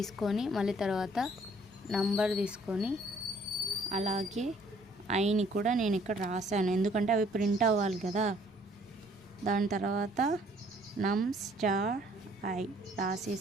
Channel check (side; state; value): both; normal; correlation 0.61